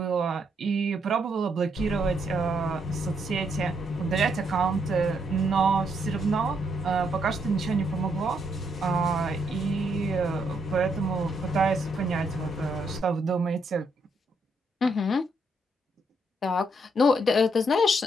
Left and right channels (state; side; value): normal; both; correlation 0.75